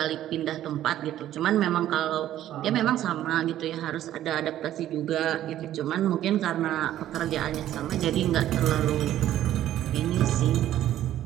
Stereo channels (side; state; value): left; quieter; 12.5 dB